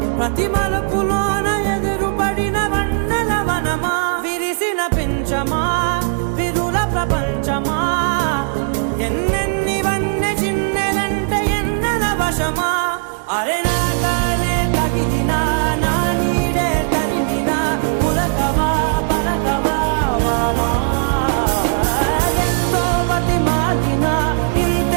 ప్రతి మలుపులోన ఎదురుపడిన వన్నెల వనమా విరిసిన పించమా విరుల ప్రపంచమా ఎన్నెన్ని వన్నె చిన్నెలంటే ఎన్నెల వశమా అరే నాగాలే తగిలినా నా నీడే తరిమినా పులకవా పలకవా వామా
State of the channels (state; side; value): silent; left; digital silence